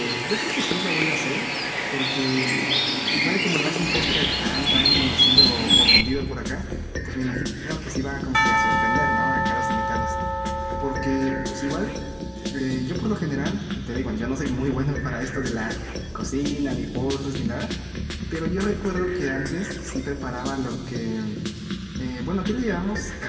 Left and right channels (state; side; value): identical; both; correlation 1.00